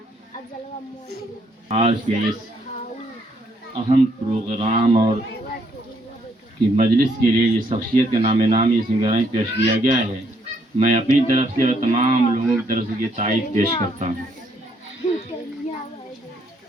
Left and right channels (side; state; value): both; normal; correlation 0.70